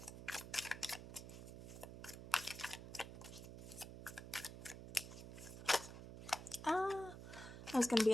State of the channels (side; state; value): right; noise; hum, 11 dB below the sound